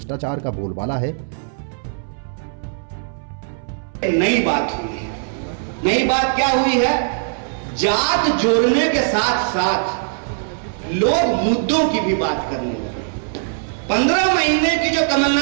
का बोलबाला है। नई बात हुई है। नई बात क्या हुई है? जात जोड़ने के साथ साथ लोग मुद्दों की भी बात करने लगे। 15 महीने की जो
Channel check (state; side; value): silent; left; 64 dB below the other